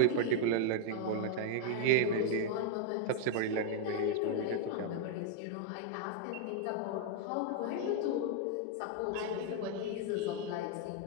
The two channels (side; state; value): both; different; correlation 0.00